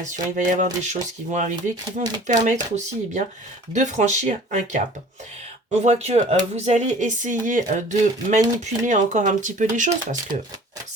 il va y avoir des choses qui vont arriver qui vont vous permettre aussi de franchir un cap. On voit que vous allez essayer de manipuler encore un petit peu les choses parce que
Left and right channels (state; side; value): normal; both; correlation 0.47